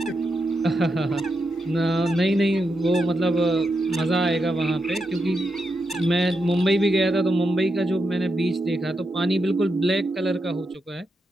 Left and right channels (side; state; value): both; normal; correlation 0.85